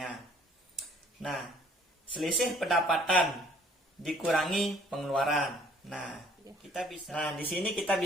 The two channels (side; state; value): both; normal; correlation 0.58